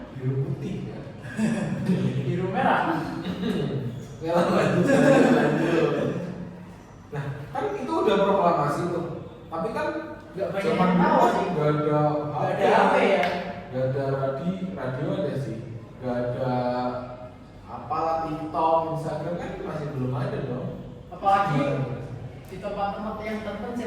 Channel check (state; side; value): identical; both; correlation 1.00